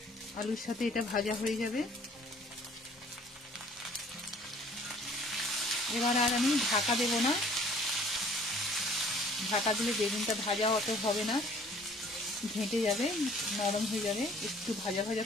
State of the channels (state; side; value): normal; both; correlation 0.55